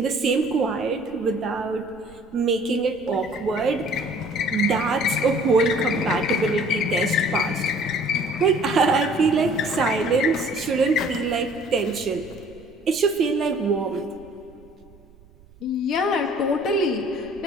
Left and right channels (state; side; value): noise; right; rumble, 26 dB below the sound